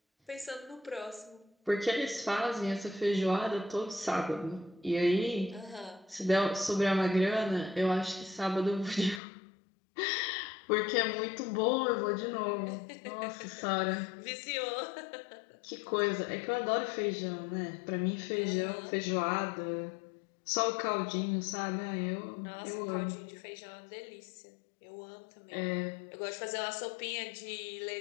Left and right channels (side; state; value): right; drops out; at 9.2 s